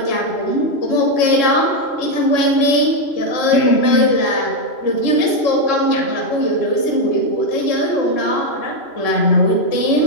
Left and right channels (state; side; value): late; right; 3.0 ms